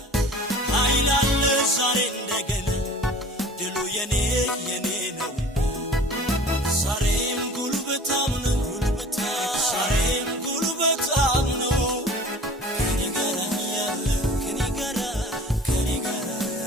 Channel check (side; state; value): both; normal; correlation 0.44